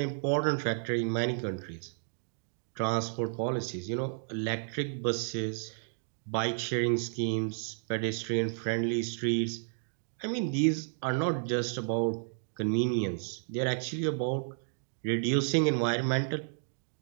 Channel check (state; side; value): silent; left; digital silence